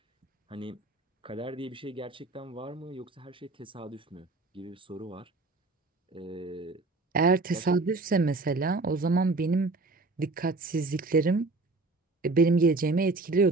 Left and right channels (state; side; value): quieter; left; 3.4 dB